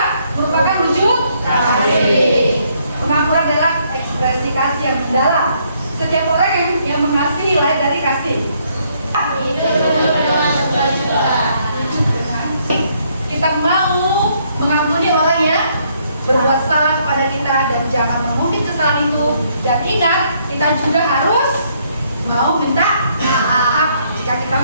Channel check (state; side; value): inverted; both; correlation -0.70